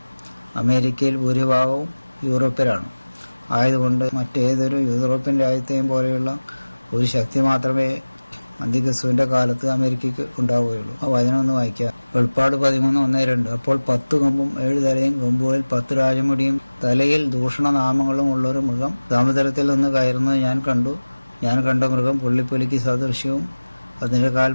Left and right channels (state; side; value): inverted; both; correlation -1.00